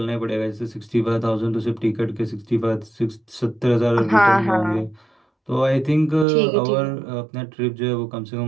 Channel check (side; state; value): left; drops out; at 6.2 s